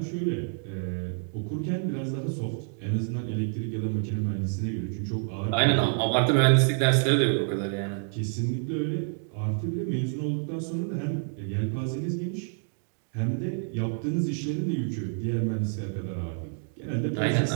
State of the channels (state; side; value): silent; left; 59 dB below the other